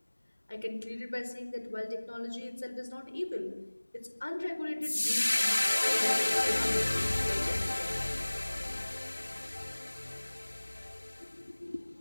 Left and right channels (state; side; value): inverted; both; correlation -1.00